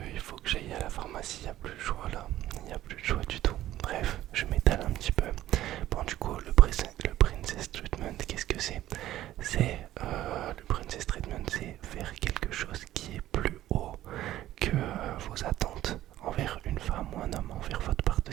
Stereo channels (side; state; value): left; quieter; 13.9 dB